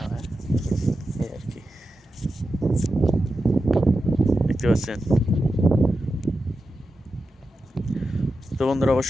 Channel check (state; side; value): normal; both; correlation 0.90